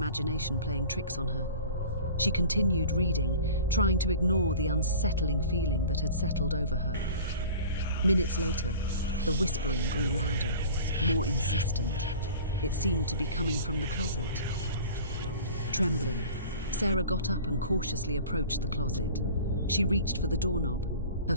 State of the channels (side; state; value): both; inverted; correlation -0.41